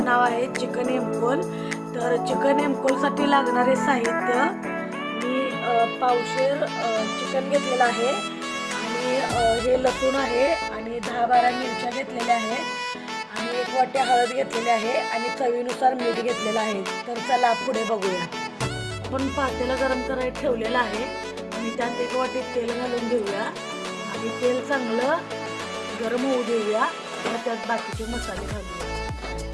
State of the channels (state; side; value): identical; both; correlation 1.00